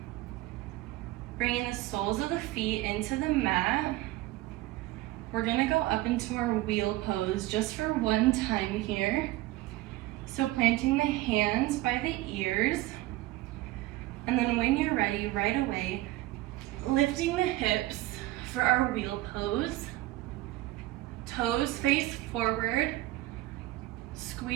Bringing the soles of the feet into the mat. We're gonna go up into our wheel pose just for one time here. So planting the hands by the ears. And then when you're ready, right away, lifting the hips for our wheel pose. Toes face forward,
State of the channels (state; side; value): quieter; left; 17.3 dB